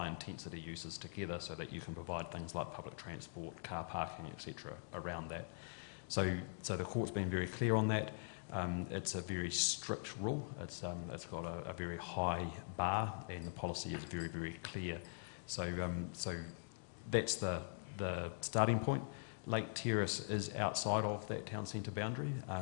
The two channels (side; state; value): right; silent; digital silence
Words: intensity uses together so that you can provide things like public transport, car parking, etc. around that. So the court's been very clear on that. It's a very strict rule. It's got a very high bar, and policy is very, very clear. So that's the starting point. Lake Terrace is outside of that town centre boundary